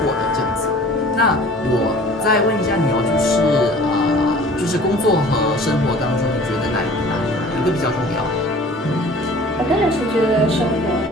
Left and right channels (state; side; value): normal; both; correlation 0.47